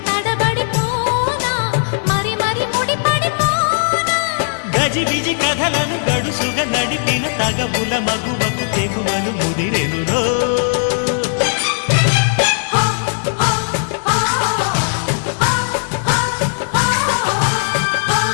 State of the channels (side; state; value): right; silent; digital silence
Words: తడబడిపోనా మరి మరి ముడిపడిపోనా గజిబిజి కథలను గడుసుగా నడిపిన తగవుల మగువకు తెగువలు ముదిరెనురో